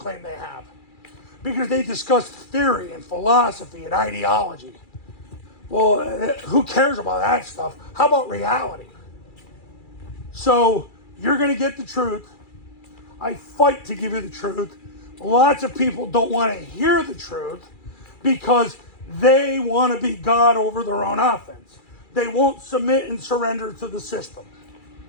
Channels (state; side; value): late; right; 2.3 ms